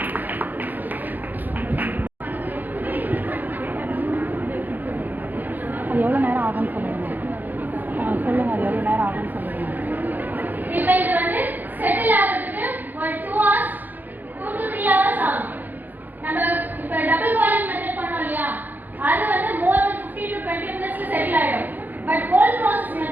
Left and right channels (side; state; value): left; late; 0.085 ms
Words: அது எவ்வளோ நேரம் ஆகும்னு சொல்லுங்கள். சொல்லுங்கள், அது எவ்வளோ நேரம் ஆகும்னு சொல்லுங்கள். இப்போ இது வந்து செட்டில் ஆகிறதுக்கு ஒரு 2 hours 2 to 3 hours ஆகும். நம்ம இப்போ டபுள் பாயிலிங் மெத்தட் பண்ணோம் இல்லையா, அது வந்து more than 15 to 20 minutes settle ஆகிடும். பட் கோல்ட் ப்ராசஸ்